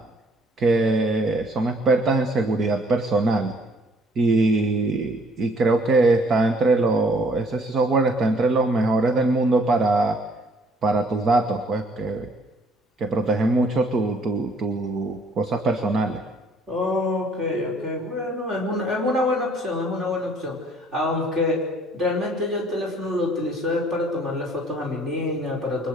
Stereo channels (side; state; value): both; normal; correlation 0.61